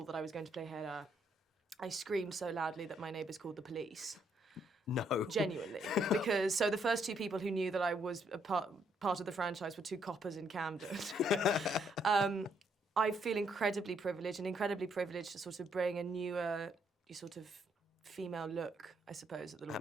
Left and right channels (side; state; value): both; normal; correlation 0.72